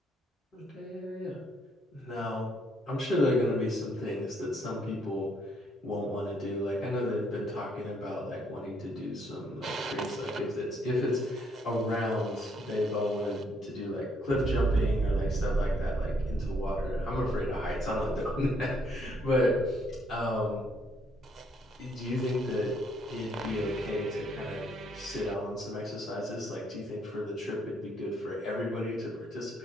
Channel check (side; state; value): both; normal; correlation 0.70